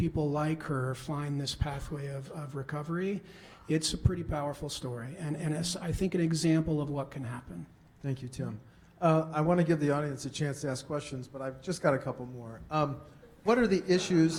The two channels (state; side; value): identical; both; correlation 1.00